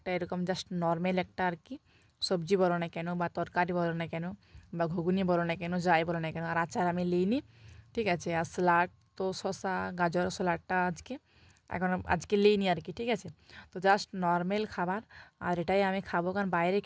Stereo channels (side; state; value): both; identical; correlation 1.00